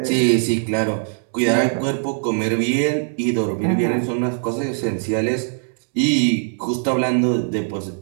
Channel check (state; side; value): silent; left; 65 dB below the other